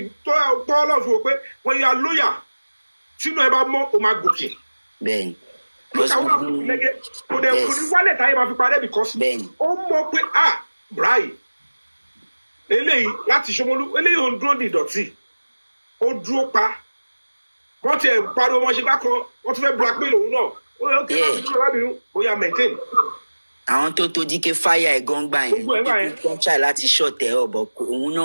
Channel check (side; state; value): both; inverted; correlation -1.00